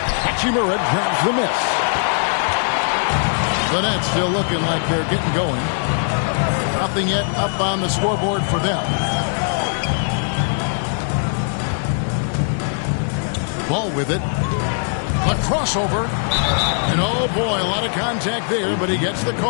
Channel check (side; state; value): right; silent; 66 dB below the other